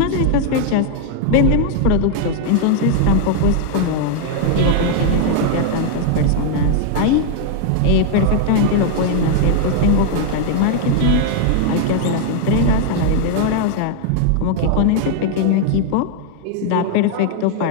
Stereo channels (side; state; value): both; different; correlation 0.00